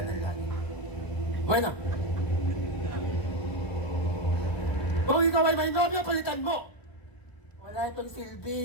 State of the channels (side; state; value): right; late; 1.0 ms